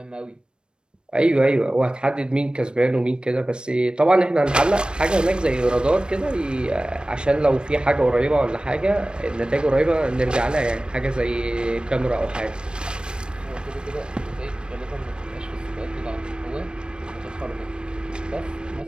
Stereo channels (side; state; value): left; late; 0.053 ms